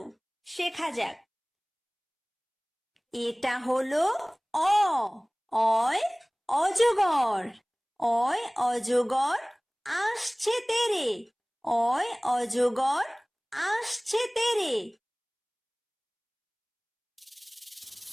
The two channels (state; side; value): identical; both; correlation 1.00